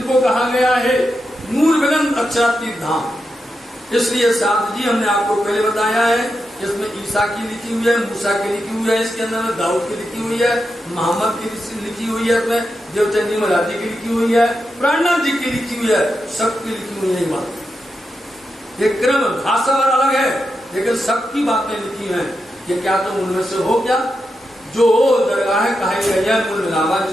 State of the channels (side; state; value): both; normal; correlation 0.87